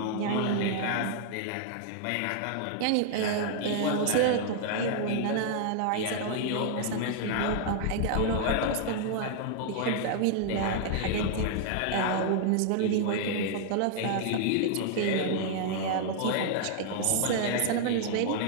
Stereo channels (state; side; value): different; both; correlation -0.01